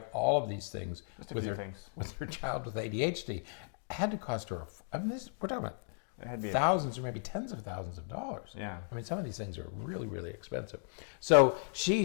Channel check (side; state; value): right; silent; 54 dB below the other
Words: all of these things with her child with ADHD. It had to cost her, we're talking about thousands or maybe tens of thousands of dollars. Yeah. I mean, some of these things are really, really expensive. So she